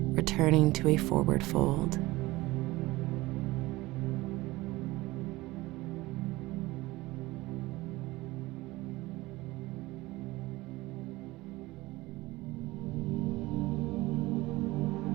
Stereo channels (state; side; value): quieter; left; 19.7 dB